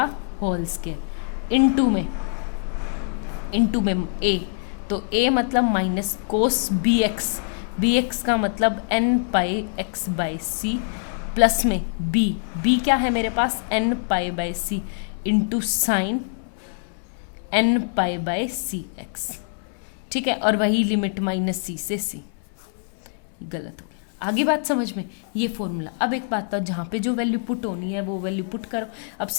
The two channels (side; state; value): right; silent; 62 dB below the other